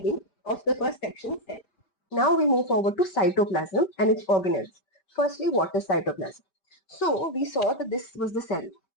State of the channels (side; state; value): right; late; 5.2 ms